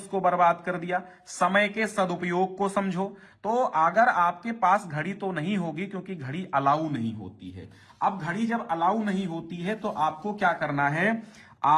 बर्बाद कर दिया। समय के सदुपयोग को समझो। तो अगर आपके पास घड़ी तो नहीं होगी, क्योंकि घड़ी अलाउ नहीं होती है। अब घड़ी जब अलाउ नहीं होती है तो आपको क्या करना है,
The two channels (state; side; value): identical; both; correlation 1.00